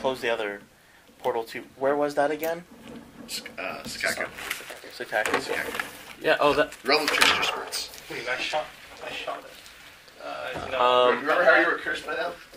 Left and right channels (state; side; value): identical; both; correlation 1.00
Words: the other portal to... Where was that again? Sakaku. Sakaku. Yeah, that... Realm of Trickster Spirits. I shot it. Remember how you were cursed by them?